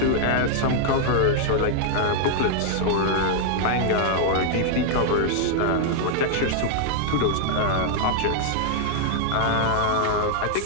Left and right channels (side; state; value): both; different; correlation -0.01